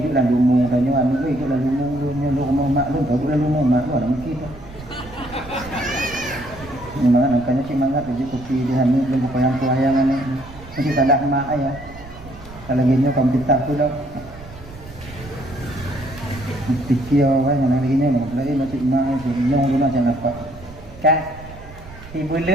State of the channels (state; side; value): noise; right; rumble, 17 dB below the sound